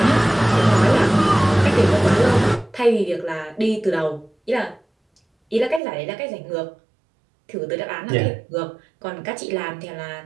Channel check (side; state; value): left; drops out; at 5.8 s